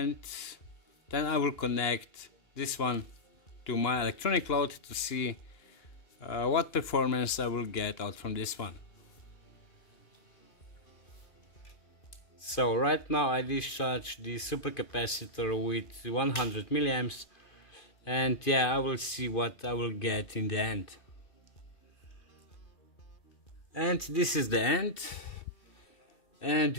then I will connect this one to my electronic load to see what performance I will get out from this one. So right now I discharge the supercapacitor with 100 milliamps, and yeah, I will see what I will get in the end. And this is the end. And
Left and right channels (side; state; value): right; late; 2.5 ms